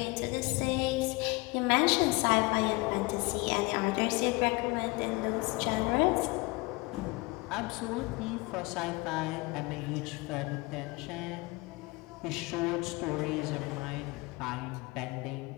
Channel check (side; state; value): right; quieter; 24.1 dB